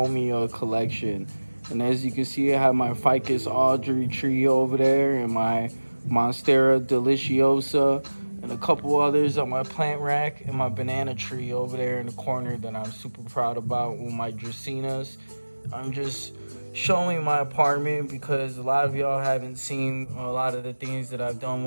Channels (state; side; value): inverted; both; correlation -1.00